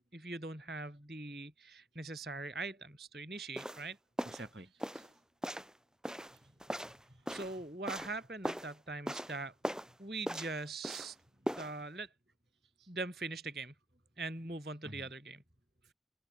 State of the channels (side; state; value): both; normal; correlation 0.72